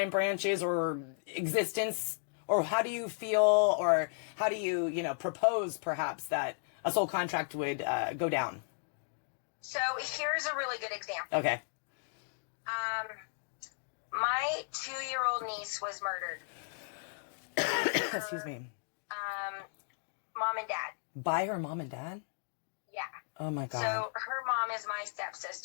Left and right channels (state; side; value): silent; right; digital silence